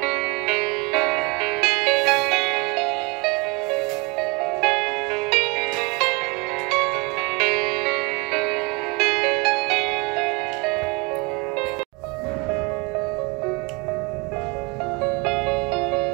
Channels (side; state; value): left; quieter; 28.6 dB